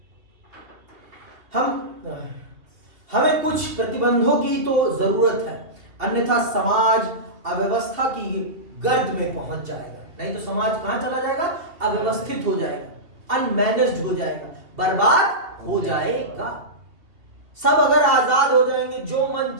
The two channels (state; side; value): late; left; 2.7 ms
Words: हमें कुछ प्रतिबंधों की तो जरूरत है, अन्यथा समाज अव्यवस्था की गर्द में पहुंच जाएगा। नहीं तो समाज कहां चला जाएगा? अव्यवस्थित हो जाएगा, अनमैनेज्ड हो जाएगा, बर्बाद हो जाएगा। सब अगर आजाद हो जाएंगे, जो मन